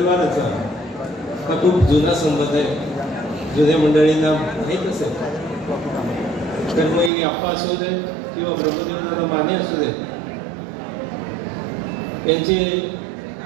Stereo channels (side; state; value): left; drops out; at 7.1 s